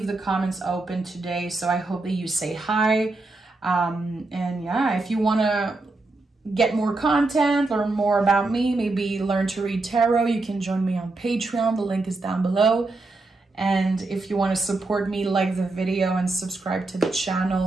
the comments open today, so I hope that you say hi. And yeah, if you want to get more content, learn more about me, maybe learn to read tarot, you can join me on Patreon. The link is down below. And if you want to support me, like the video and subscribe to the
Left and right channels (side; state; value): left; quieter; 3.3 dB